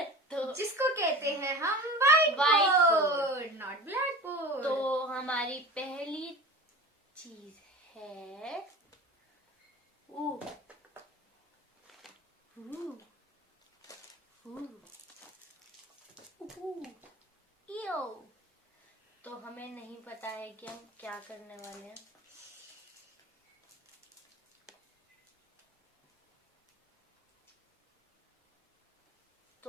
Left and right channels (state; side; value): normal; both; correlation 0.34